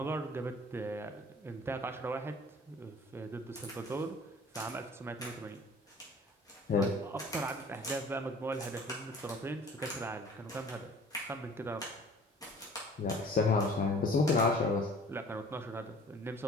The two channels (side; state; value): both; normal; correlation 0.49